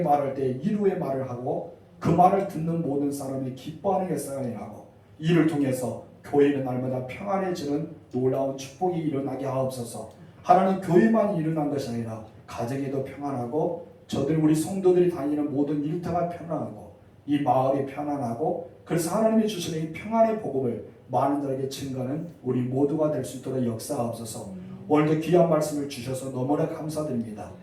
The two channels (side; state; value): both; identical; correlation 1.00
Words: 때 이루의 말을 하고 그 말을 듣는 모든 사람이 기뻐하는 역사가 일어나고 이를 통해서 교회는 날마다 평안해지는 놀라운 축복이 일어나게 하옵소서. 하나님 교회만 일어난 것이 아니라 가정에도 평안하고 저들 우리 성도들이 다니는 모든 일터가 평안하고 이 마을이 평안하고 그래서 하나님이 주시는 이 평안의 복음을 많은 자에게 증거하는 우리 모두가 될 수 있도록 역사하옵소서. 오늘도 귀한 말씀을 주셔서 너무나 감사드립니다.